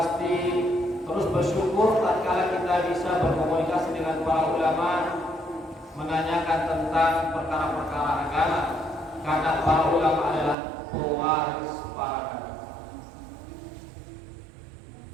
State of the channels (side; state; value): left; drops out; at 10.6 s